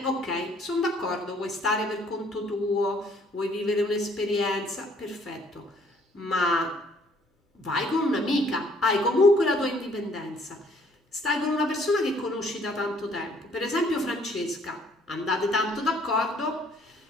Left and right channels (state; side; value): normal; both; correlation 0.61